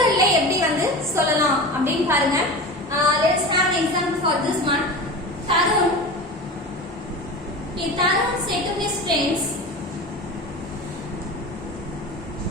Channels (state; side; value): normal; both; correlation 0.31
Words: எப்படி வந்து சொல்லலாம் அப்படின்னு பாருங்க. Let's have an example for this one. Tarun said to